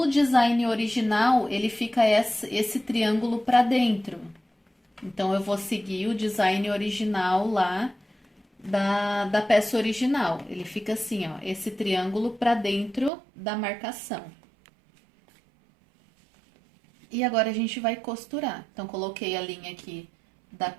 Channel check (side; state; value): left; drops out; at 13.1 s